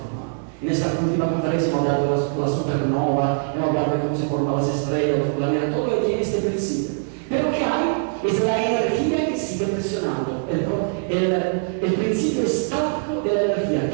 En esta última conferencia hemos hablado de la supernova, hemos hablado de cómo se forman las estrellas, los planetas, todo lo que tiene este principio. Pero ¿qué hay es la energía que sigue presionando, el principio estático de la energía.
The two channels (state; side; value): silent; left; digital silence